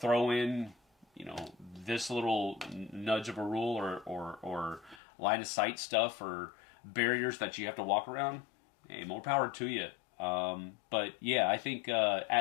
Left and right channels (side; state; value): right; drops out; at 5.0 s